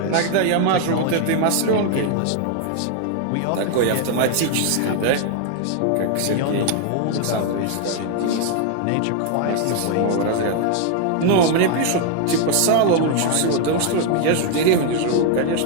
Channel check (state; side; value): different; both; correlation 0.00